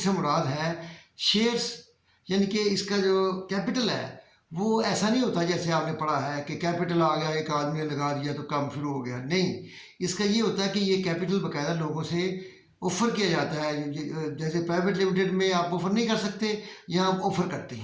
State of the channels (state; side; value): identical; both; correlation 1.00